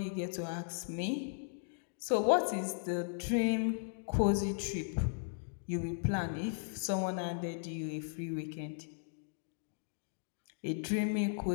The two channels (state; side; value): silent; right; digital silence